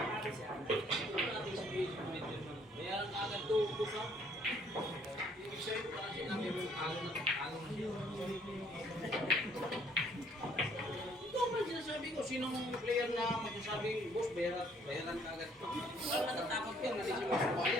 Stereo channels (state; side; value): normal; both; correlation 0.63